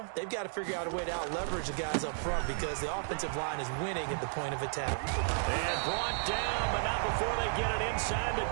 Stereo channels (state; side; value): silent; left; digital silence